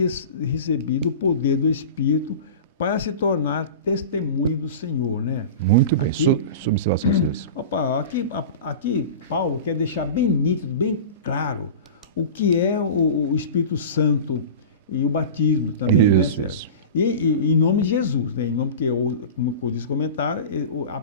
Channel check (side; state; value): both; inverted; correlation -0.32